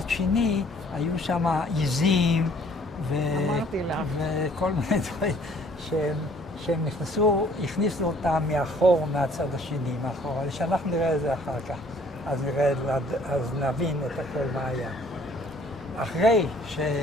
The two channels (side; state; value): both; normal; correlation 0.58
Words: שני, היו שם עיזים וכל מיני דברים שהם הכניסו אותם מאחור, מהצד השני, מאחור. אבל שאנחנו נראה את זה אחר כך, אז נבין את הכל מה היה. אחרי